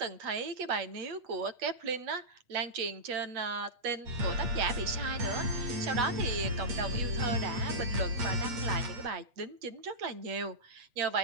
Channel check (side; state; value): left; late; 8.3 ms